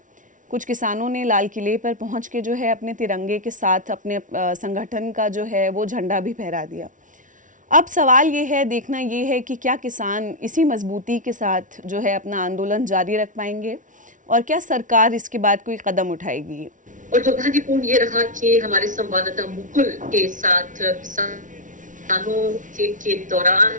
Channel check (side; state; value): left; late; 0.37 ms